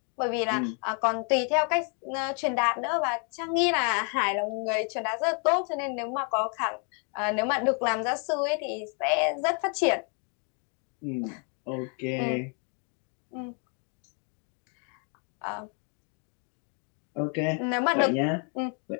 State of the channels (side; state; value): right; quieter; 39.9 dB